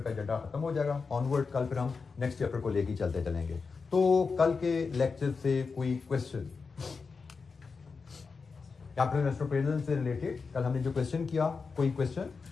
का एजेंडा खत्म हो जाएगा ऑनवर्ड। कल फिर हम नेक्स्ट चैप्टर को लेकर चलते चलेंगे। तो कल के लेक्चर से कोई क्वेश्चन कैपिटल इन्वेस्टमेंट प्रिजल से रिलेटेड कल हमने जो क्वेश्चन किया, कोई क्वेश्चन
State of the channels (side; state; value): right; quieter; 4.9 dB